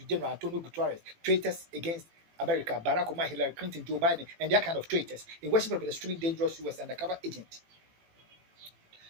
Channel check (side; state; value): left; late; 18 ms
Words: General Antonio Guterres, traitors against America, Barack Obama, Hillary Clinton, Joe Biden, and their kind of traitors, in worship of the extremely dangerous US undercover agent,